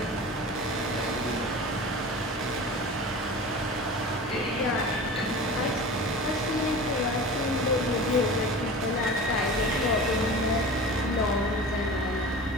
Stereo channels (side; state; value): both; normal; correlation 0.35